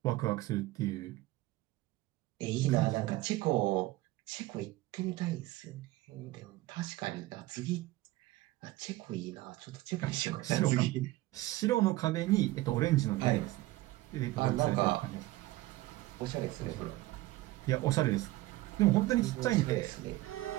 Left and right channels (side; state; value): left; quieter; 18.0 dB